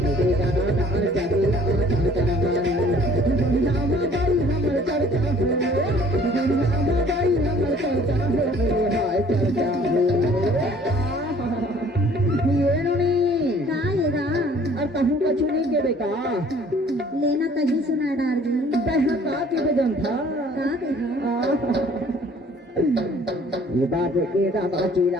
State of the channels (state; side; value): normal; both; correlation 0.55